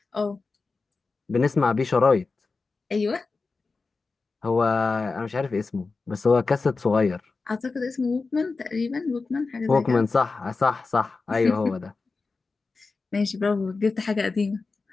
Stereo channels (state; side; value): quieter; right; 4.1 dB